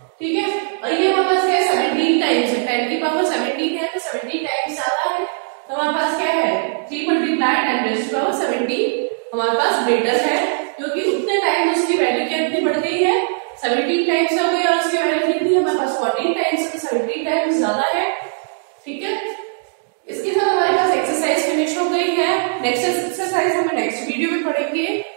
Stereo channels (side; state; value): left; silent; digital silence